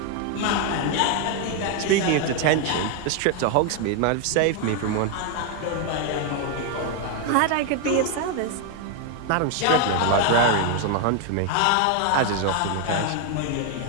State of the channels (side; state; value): both; different; correlation 0.01